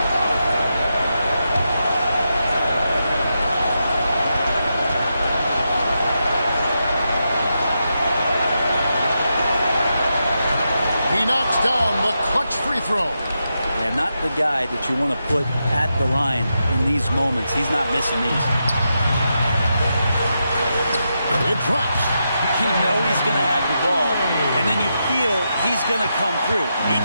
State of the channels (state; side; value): inverted; both; correlation -0.86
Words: He knocks down the clutch free throw. Yeah, not the guy that you want to put at the line in these moments. He's not missing these. It drops. You know he's going to have the ball, and then you feel he's going to come through. He